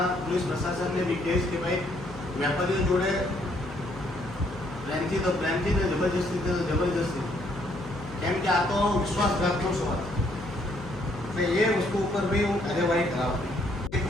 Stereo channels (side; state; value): left; noise; hum, 14 dB below the sound